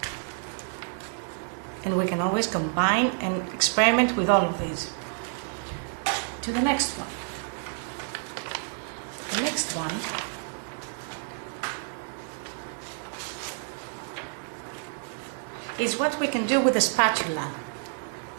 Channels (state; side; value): silent; left; 58 dB below the other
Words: and we can always combine and experiment with all of these. To the next one. The next one is what we can do with the spatula.